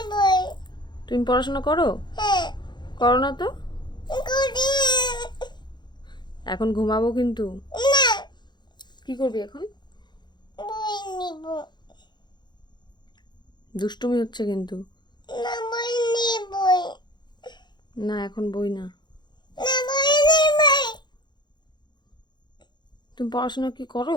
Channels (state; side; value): late; right; 0.21 ms